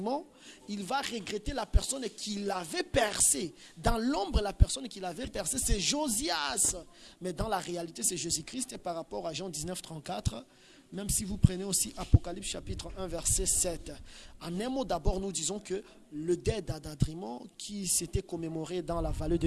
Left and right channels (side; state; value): both; identical; correlation 1.00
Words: Il va regretter la personne qui l'avait percé. Dans l'ombre, la personne qui l'avait percé, c'est Josias. Mais dans la réalité, c'est Jésus-Christ. Et par rapport à Jean 19, 34, même si vous prenez aussi Apocalypse chapitre 1, verset 7. En un mot, d'abord, nous disons que le deuil d'Adadrimon, qui s'était commémoré dans la vallée